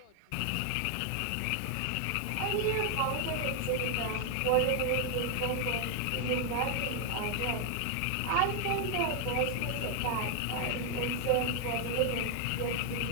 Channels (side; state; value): both; different; correlation 0.00